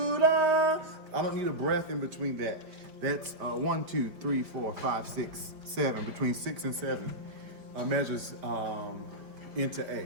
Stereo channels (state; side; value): late; left; 4.9 ms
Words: da. I don't need a breath in between that. That's 1, 2, 3, 4, 5, 6, 7. Between 6 and 7 measures into